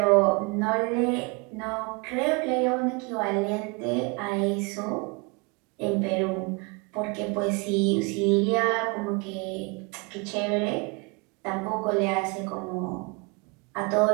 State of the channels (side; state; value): left; quieter; 29.8 dB